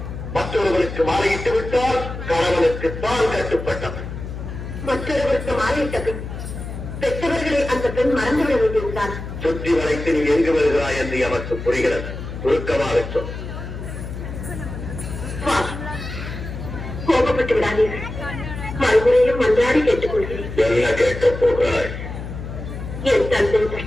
மற்றொருவருக்கு மாலையிட்டு விட்டால் கணவனுக்கு தான் கட்டுப்பட்டவன். மற்றொருவருக்கு மாலையிட்ட பின் பெற்றவர்களை அந்த பெண் மறந்துவிட வேண்டியிருந்தார். சுற்றி வளைத்து நீ எங்கு வருகிறாய் என்று எமக்கு புரிகிறது. சுருக்கமாக சொல். கோபப்பட்டு விடாதீர்கள். மறுமுறையும் மன்றாடி கேட்டுக் கொள்கிறேன். என்ன கேட்கப் போகிறாய்? என் தந்தை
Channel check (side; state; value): left; noise; hum, 8 dB below the sound